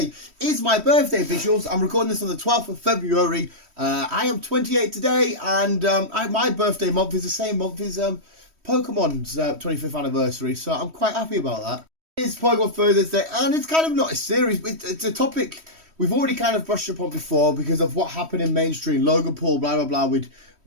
is my birthday visuals. I'm recording this on the 12th of February. I am 28 today, and my birthday month is the same month as Pokemon's 25th anniversary, so I'm quite happy about that. It's Pokemon Thursday, and it's kind of not a series. It's a topic we've already kind of brushed upon before because of what happened in mainstream, Logan Paul, blah, blah, blah, with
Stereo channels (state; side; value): late; left; 3.1 ms